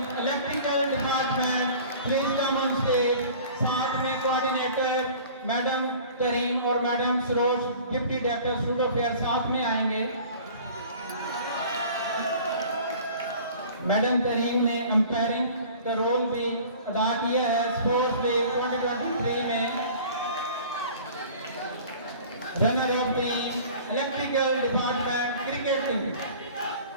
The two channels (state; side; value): inverted; both; correlation -0.46